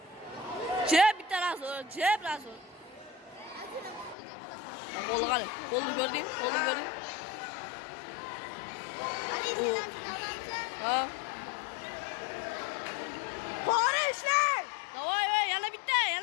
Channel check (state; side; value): drops out; right; at 4.2 s